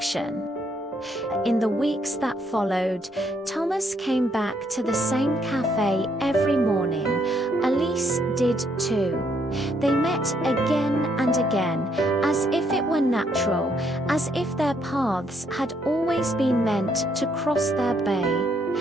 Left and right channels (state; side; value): normal; both; correlation 0.71